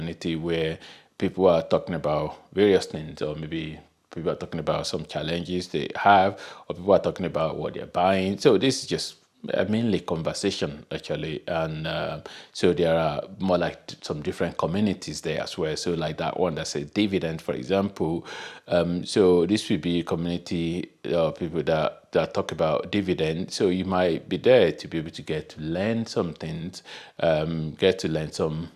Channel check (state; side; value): identical; both; correlation 1.00